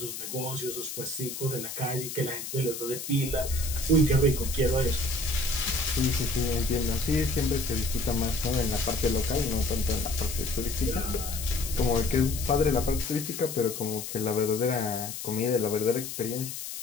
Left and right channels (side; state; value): left; noise; hiss, 7 dB below the sound